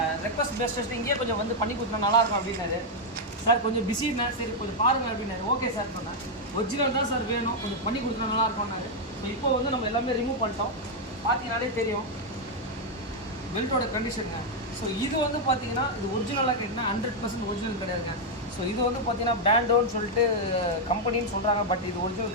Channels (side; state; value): both; normal; correlation 0.00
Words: ரெக்வஸ்ட் பேஸ்ட் இங்கேயே கொஞ்சம் வந்து பண்ணி கொடுத்தா நல்லாயிருக்கும் அப்படின்னாரு. சார் கொஞ்சம் பிஸின்னா, சரி கொஞ்சம் பாருங்கள் அப்படின்னாரு. ஓகே சார் சொன்னேன். ஒரிஜினல் தான் சார் வேணும், கொஞ்சம் பண்ணி கொடுத்தா நல்லாயிருக்கும்னாரு. ஸோ இப்போ வந்து நம்ம எல்லாமே ரிமூவ் பண்ணிட்டோம். பார்த்தீங்கனாலே தெரியும் பெல்ட்டோட கண்டிஷனுங்க. ஸோ இது வந்து பார்த்தீங்கன்னா இது ஒரிஜினலாக கேட்டிங்கன்னா 100% ஒரிஜினல் கிடையாதுங்க. ஸோ இது வந்து பார்த்தீங்கன்னா பேண்டோன்னு சொல்லிட்டு கம்பெனின்னு சொல்கிறாங்க, பட் இது